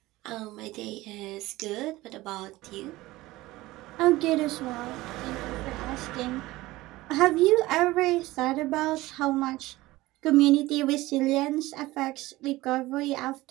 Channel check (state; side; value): quieter; left; 18.6 dB